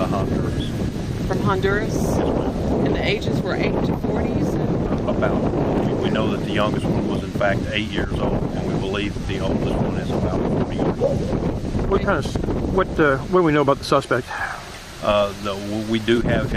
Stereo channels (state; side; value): identical; both; correlation 1.00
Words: Honduras. From Honduras? Yes, ma'am. And the ages were 8 to 40s? About. We know that the youngest one was in fact 8 years old, and we believe that the oldest one is about 40 years old. What do we know about the suspect? We do have